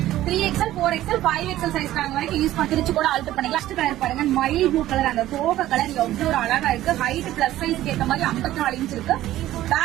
3XL 4XL 5XL சைஸ் வரைக்கும் யூஸ் பண்ணிச்சு கூட ஆல்டர் பண்ணிக்கலாம். ஃபர்ஸ்ட் கலர் பாருங்க, மயில் ப்ளூ கலர். அந்த தோக கலர் எவ்வளவு ஒரு அழகா இருக்கு. ஹைட் பிளஸ் சைஸ்க்கு ஏற்ற மாதிரி 54 இன்ச் இருக்கு.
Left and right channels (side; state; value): left; quieter; 14.3 dB